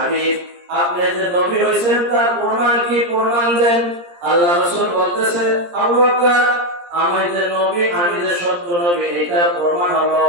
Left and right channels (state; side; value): late; left; 17 ms